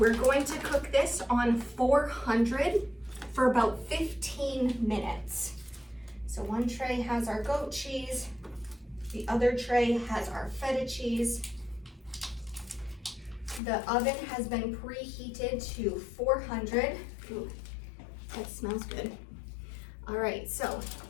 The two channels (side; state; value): right; drops out; at 13.6 s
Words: going to cook this on 400 for about 15 minutes. So one tray has our goat cheese, the other tray has our feta cheese. The oven has been preheated to 400. Ooh, that smells good. All right, so